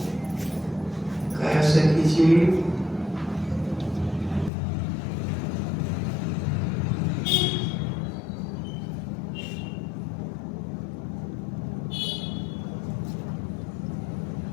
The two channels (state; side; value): drops out; right; at 4.5 s